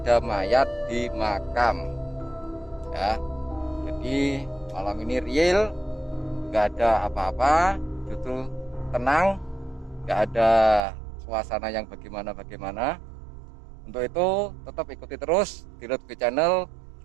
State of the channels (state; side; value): drops out; left; at 10.8 s